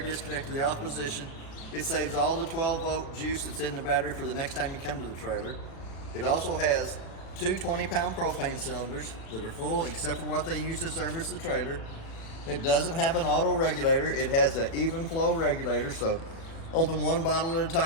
disconnect to the off position. It saves all the 12 volt juice that's in the battery for the next time you come to the trailer. It also has two 20-pound propane cylinders that are full except for what they use to service the trailer. It doesn't have an auto regulator. It has an even flow regulator, so open one bottle at a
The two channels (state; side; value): late; right; 36 ms